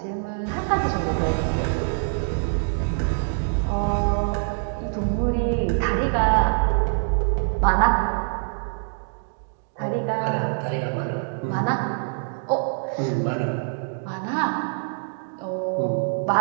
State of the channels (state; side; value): silent; left; 62 dB below the other